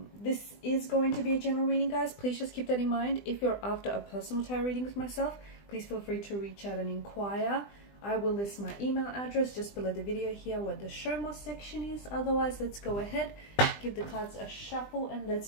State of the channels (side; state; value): right; late; 20 ms